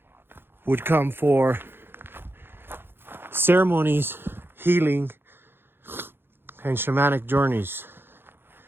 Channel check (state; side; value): late; left; 0.10 ms